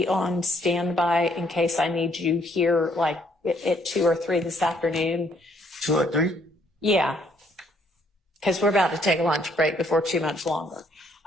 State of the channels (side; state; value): both; normal; correlation 0.67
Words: on standby in case I need you here, like at 2 or 3 this afternoon. 2 or 3? Yeah, because we're about to take a lunch break before too much longer.